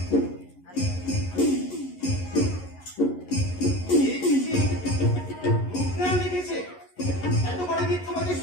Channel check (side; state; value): right; late; 11 ms